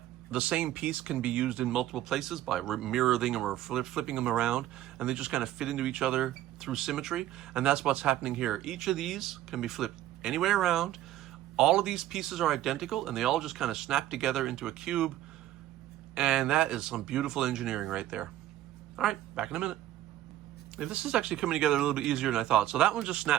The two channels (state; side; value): quieter; left; 13.6 dB